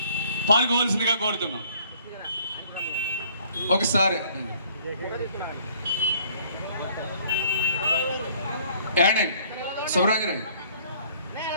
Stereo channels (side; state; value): both; inverted; correlation -0.59